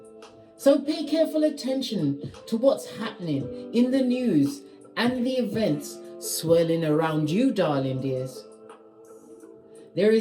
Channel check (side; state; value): both; identical; correlation 1.00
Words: So pay careful attention to what's happening in the news and the events swirling around you, darling dears. There